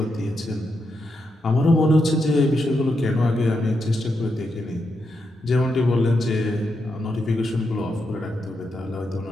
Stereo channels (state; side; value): normal; both; correlation 0.84